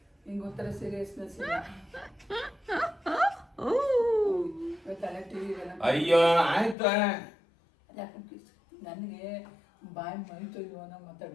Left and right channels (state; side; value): drops out; right; at 6.8 s